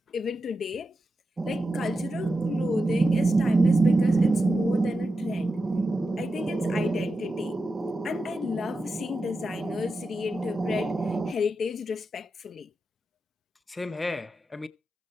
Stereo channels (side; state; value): both; normal; correlation 0.90